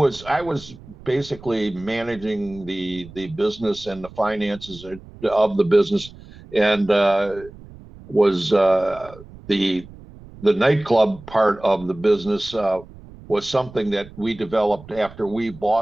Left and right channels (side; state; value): right; noise; rumble, 19 dB below the sound